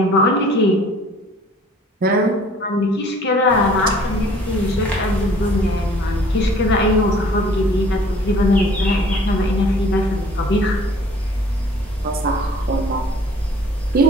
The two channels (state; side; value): normal; both; correlation 0.53